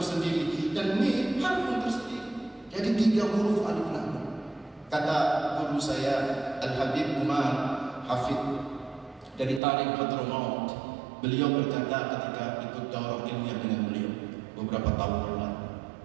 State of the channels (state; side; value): drops out; left; at 9.6 s